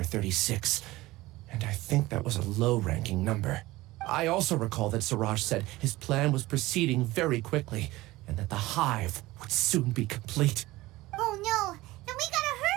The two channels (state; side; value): quieter; left; 18.8 dB